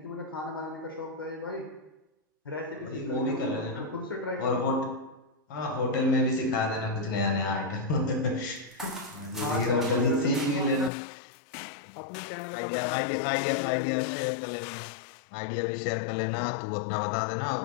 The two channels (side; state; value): right; drops out; at 10.9 s